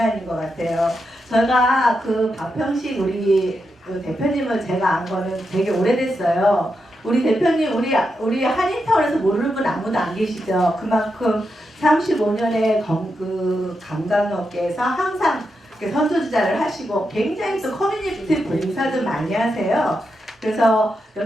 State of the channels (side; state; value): both; normal; correlation 0.86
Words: 것 같아요. 제가 그 박평식 우리 그 대표님을 제가 안 거는 되게 오래됐어요. 우리 대표님 우리 한인타운에서 모르는 분 아무도 안 계시죠. 그만큼 35년의 그 관광업계에서 항상 선두주자를 하시고 굉장히 또 커뮤니티 봉사도 많이 하세요. 그래서